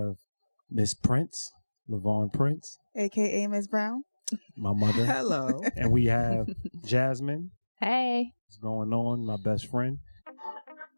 Miss Prince, Lavarn Prince. A.K.A. Miss Brown. My mother. Hello. And we have Jasmine. Hey. What's going on? My best friend.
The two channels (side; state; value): both; inverted; correlation -1.00